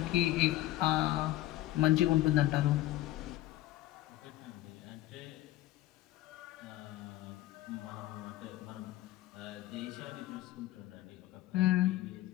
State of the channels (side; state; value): right; quieter; 15.4 dB